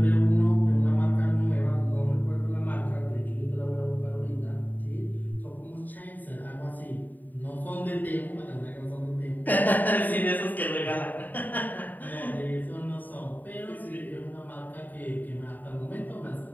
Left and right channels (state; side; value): late; right; 0.086 ms